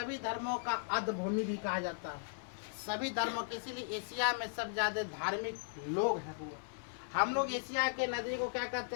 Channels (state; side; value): silent; right; digital silence